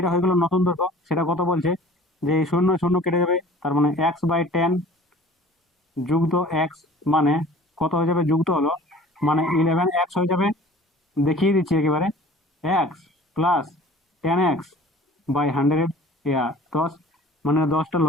হয়ে গেল নতুন দৈর্ঘ্য। সেটা কত বলছে, যে এই 0 কেটে যাবে, তার মানে x/10 যুক্ত এক্স, মানে কত হয়ে যাবে, যুক্ত হলো মানে 11x হয়ে যাবে। দেখিয়ে দিচ্ছি একেবারে, এক্স প্লাস 10x/100, 10, মানে 10টা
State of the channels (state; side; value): normal; both; correlation 0.46